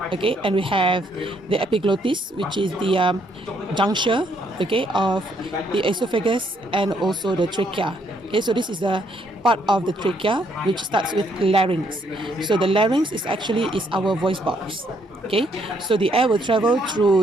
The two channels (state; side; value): normal; both; correlation 0.71